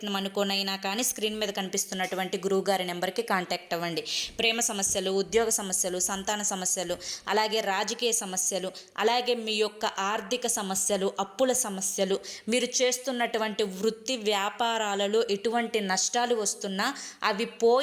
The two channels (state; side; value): identical; both; correlation 1.00